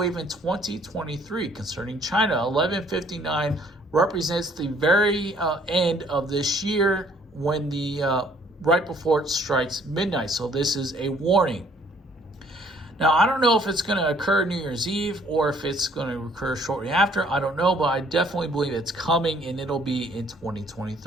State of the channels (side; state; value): both; normal; correlation 0.61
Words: in 2023, concerning China. 11:59 represents the very end of this year, when the right before it strikes midnight. So this is a warning. Now, I don't know if it's going to occur New Year's Eve or if it's going to occur shortly after. I don't know, but I definitely believe it's coming, and it'll be in